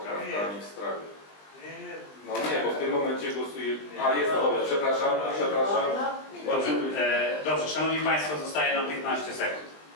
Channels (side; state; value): right; late; 20 ms